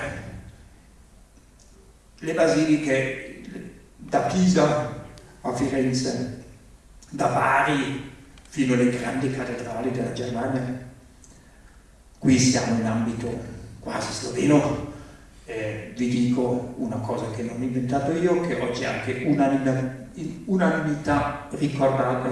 le basiliche da Pisa a Firenze, da Bari fino alle grandi cattedrali della Germania. Qui siamo in ambito quasi sloveno. Vi dico una cosa che non ho inventato io, che oggi è anche unanimità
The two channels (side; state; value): both; identical; correlation 1.00